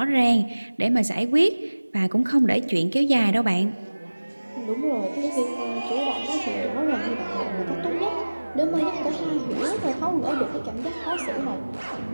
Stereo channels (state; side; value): inverted; both; correlation -1.00